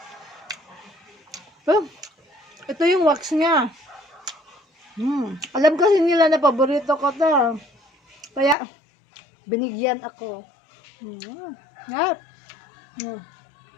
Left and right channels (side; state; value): right; drops out; at 8.6 s